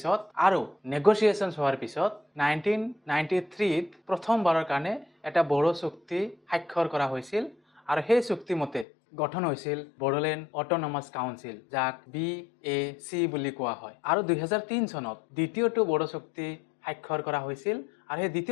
আৰু নেগোচিয়েশ্যনছ হোৱাৰ পিছত 1993ত প্ৰথমবাৰৰ কাৰণে এটা বড়ো চুক্তি স্বাক্ষৰ কৰা হৈছিল আৰু সেই চুক্তি মতে গঠন হৈছিল বড়োলেণ্ড অট'নমাছ কাউন্সিল, যাক BAC বুলি কোৱা হয়। আৰু 2003 চনত দ্বিতীয়টো বড়ো চুক্তি স্বাক্ষৰ কৰা হৈছিল আৰু সেই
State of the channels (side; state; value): right; drops out; at 8.8 s